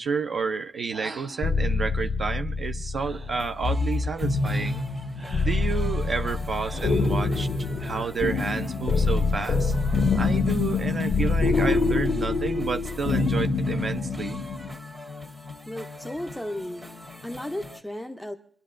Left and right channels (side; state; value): both; normal; correlation 0.78